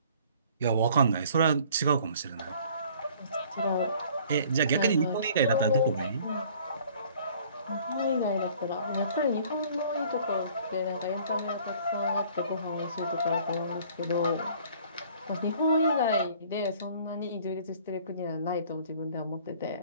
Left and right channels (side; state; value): both; inverted; correlation -0.54